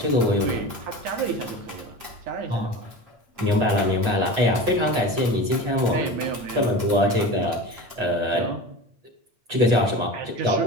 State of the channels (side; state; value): left; late; 8.6 ms